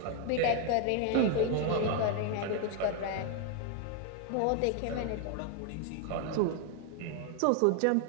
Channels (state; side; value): different; both; correlation 0.01